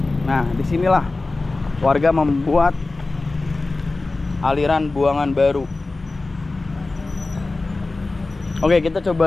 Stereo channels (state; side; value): quieter; right; 3.4 dB